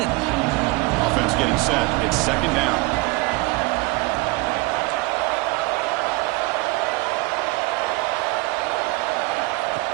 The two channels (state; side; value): quieter; left; 23.8 dB